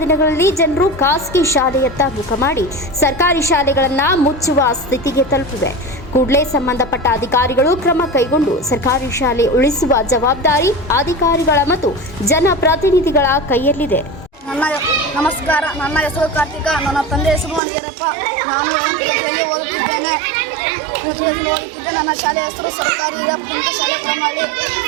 ದಿನಗಳಲ್ಲಿ ಜನರು ಖಾಸಗಿ ಶಾಲೆಯತ್ತ ಮುಖ ಮಾಡಿ ಸರ್ಕಾರಿ ಶಾಲೆಗಳನ್ನು ಮುಚ್ಚುವ ಸ್ಥಿತಿಗೆ ತಲುಪಿವೆ. ಕೂಡಲೇ ಸಂಬಂಧಪಟ್ಟ ಅಧಿಕಾರಿಗಳು ಕ್ರಮ ಕೈಗೊಂಡು ಸರ್ಕಾರಿ ಶಾಲೆ ಉಳಿಸುವ ಜವಾಬ್ದಾರಿ ಅಧಿಕಾರಿಗಳ ಮತ್ತು ಜನಪ್ರತಿನಿಧಿಗಳ ಕೈಯಲ್ಲಿದೆ. ನಮಸ್ಕಾರ. ನನ್ನ ಹೆಸರು ಕಾರ್ತಿಕ. ನನ್ನ ತಂದೆ ಹೆಸರು ಅನಿಯರಪ್ಪ. ನಾನು 8ನೇ ತರಗತಿಯಲ್ಲಿ ಓದುತ್ತಿದ್ದೇನೆ. ನನ್ನ ಶಾಲೆಯ ಹೆಸರು ಸರ್ಕಾರಿ ಹಿರಿಯ ಪ್ರಾಥಮಿಕ ಶಾಲೆ ಕೊಡಮನಹಳ್ಳಿ.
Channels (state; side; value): drops out; left; at 17.6 s